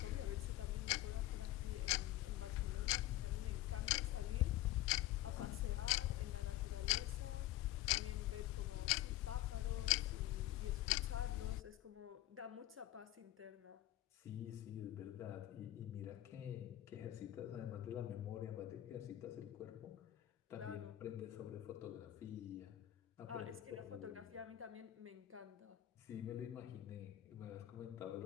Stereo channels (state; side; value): quieter; right; 14.7 dB